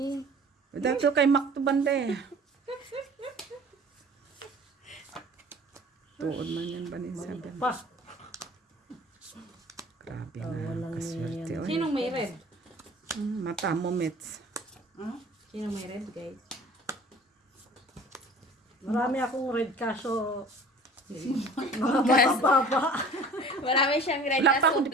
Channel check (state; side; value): normal; both; correlation 0.46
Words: dato kay Mac to banda eh. Tuod man yan ba ni sabi? Pa. Grabe na, kaswerte. Oy. Sinong may red? Mata mo, Mitz. Sinong may red, guys? Marami akong red kaso mababa. Marami siyang red Black pa kaso ako,